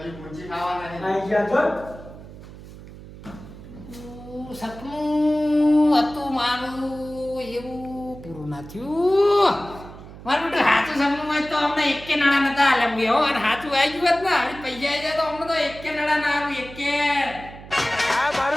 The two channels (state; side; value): noise; right; hum, 16 dB below the sound